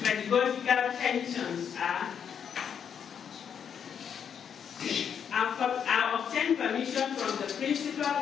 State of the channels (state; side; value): quieter; right; 7.8 dB